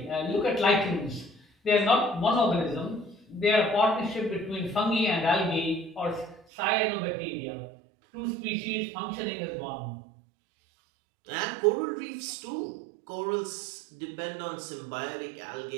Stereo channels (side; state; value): left; drops out; at 6.5 s